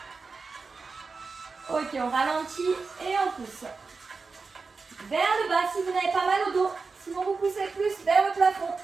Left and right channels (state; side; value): quieter; left; 4.4 dB